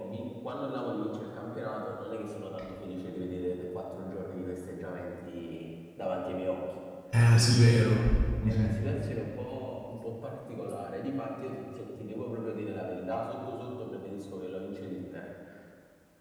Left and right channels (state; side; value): identical; both; correlation 1.00